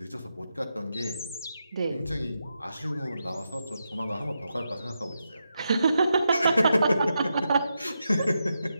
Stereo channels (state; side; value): inverted; both; correlation -0.86